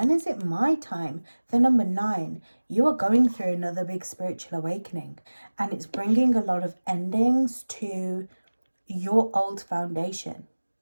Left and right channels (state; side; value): inverted; both; correlation -1.00